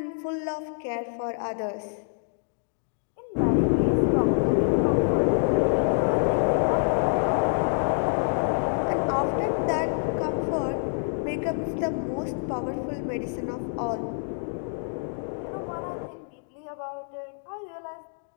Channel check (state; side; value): silent; right; digital silence